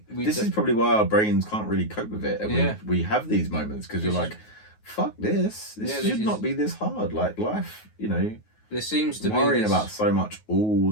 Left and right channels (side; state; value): right; late; 9.4 ms